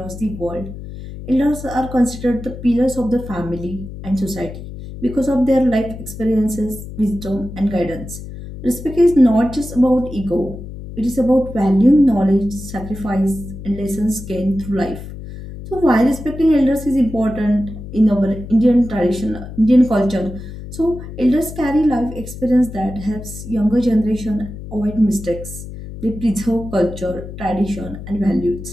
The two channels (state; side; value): noise; left; hum, 11 dB below the sound